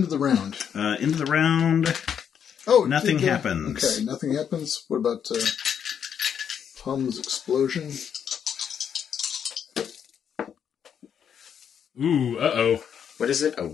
of the round. Into the round. Oh, Nothing happens. Okay, nothing happens. What about Hum's explosion? Ooh, uh-oh. What is it? A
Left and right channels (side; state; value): right; quieter; 8.1 dB